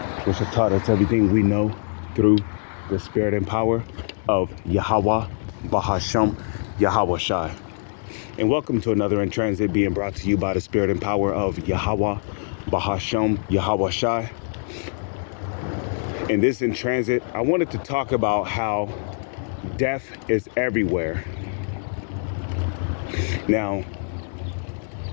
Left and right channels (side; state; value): right; silent; 63 dB below the other